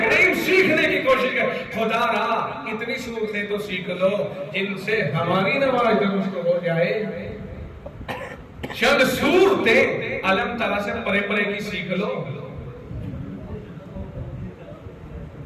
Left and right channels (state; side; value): identical; both; correlation 1.00